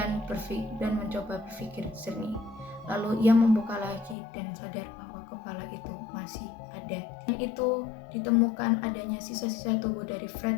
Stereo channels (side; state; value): right; drops out; at 4.2 s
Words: mencoba berpikir jernih. Lalu ia membuka lagi dan sadar bahwa kepala itu masih ada. Dan itu ditemukan adanya sisa-sisa tubuh dari